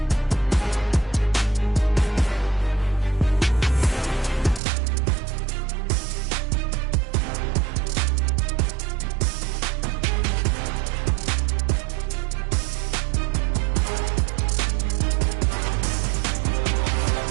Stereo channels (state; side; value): drops out; left; at 4.6 s